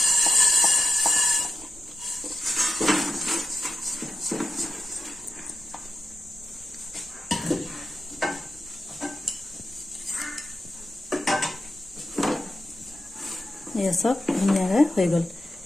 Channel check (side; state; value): both; normal; correlation 0.90